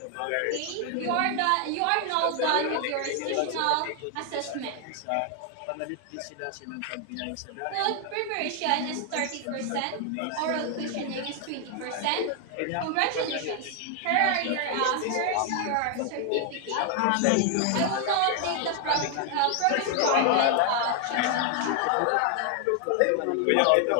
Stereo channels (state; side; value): different; both; correlation 0.00